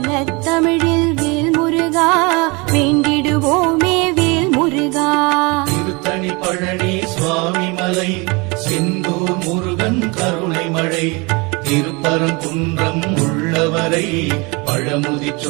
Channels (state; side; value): quieter; left; 27.7 dB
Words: தமிழில் வேல் முருகா, வேண்டிடுவோமே வேல் முருகா. திருத்தணி பழனி சுவாமி மலை செந்தூர் முருகன் கருணை மழை திருப்பரங்குன்றம் உள்ளவரை